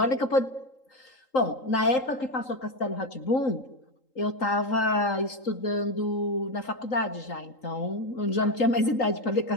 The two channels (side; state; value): right; late; 3.8 ms